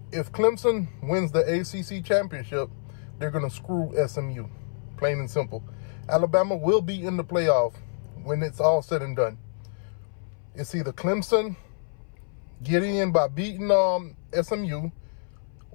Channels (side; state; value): right; silent; 60 dB below the other